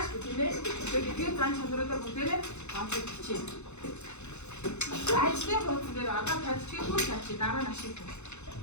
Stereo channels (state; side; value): late; right; 0.82 ms